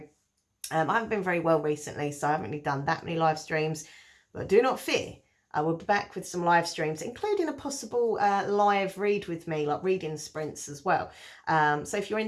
I haven't been very well recently, so I haven't really done that many live streams, but do not fear. I will be back with some live streams, including a possible live read with me, like reading sprints as well. So if you're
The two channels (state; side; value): identical; both; correlation 1.00